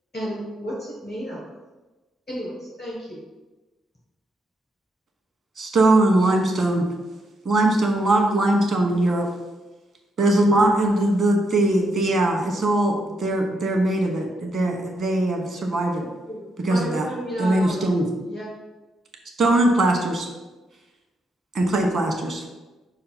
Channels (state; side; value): normal; both; correlation 0.79